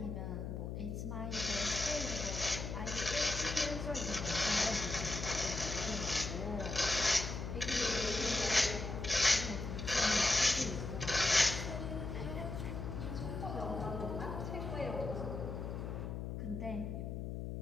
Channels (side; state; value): left; noise; hum, 5 dB below the sound